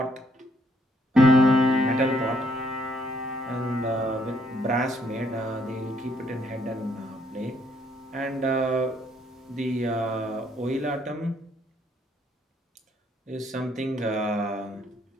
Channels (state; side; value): normal; both; correlation 0.69